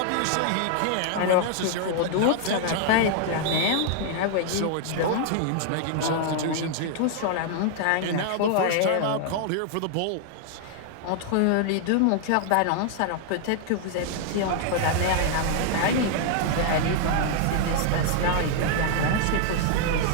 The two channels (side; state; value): both; different; correlation 0.00